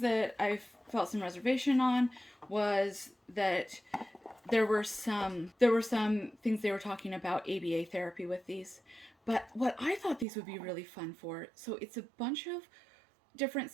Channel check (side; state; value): left; drops out; at 10.2 s